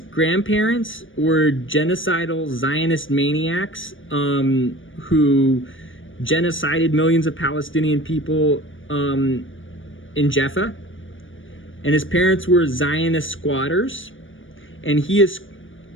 were genocidal Zionist maniacs who genocided millions of Palestinian people in Jaffa. And his parents were Zionist squatters. And he is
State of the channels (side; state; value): right; late; 0.57 ms